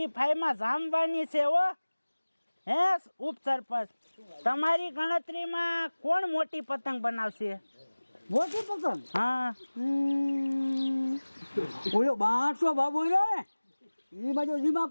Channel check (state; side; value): inverted; both; correlation -1.00